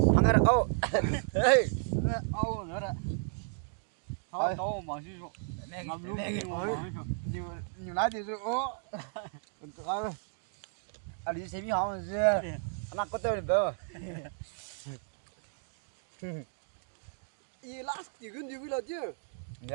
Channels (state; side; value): silent; left; digital silence